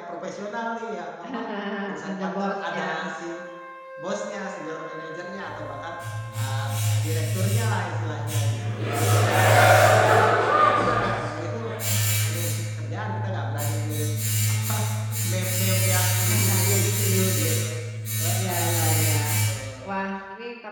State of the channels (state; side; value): identical; both; correlation 1.00